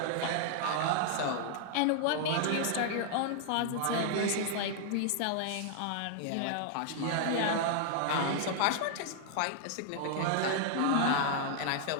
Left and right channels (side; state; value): both; different; correlation 0.00